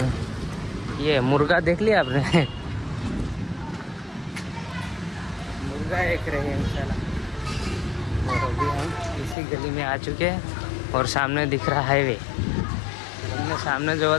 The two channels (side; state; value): right; drops out; at 9.3 s